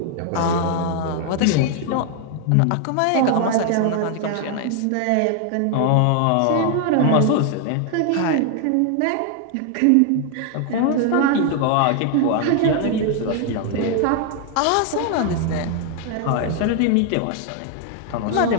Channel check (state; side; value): different; both; correlation 0.00